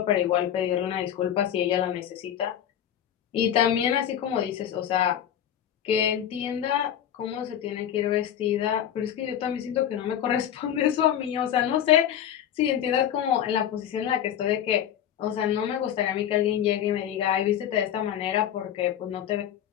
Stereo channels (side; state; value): right; quieter; 10.2 dB